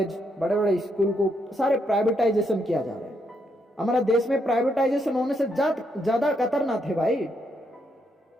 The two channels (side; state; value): both; normal; correlation 0.77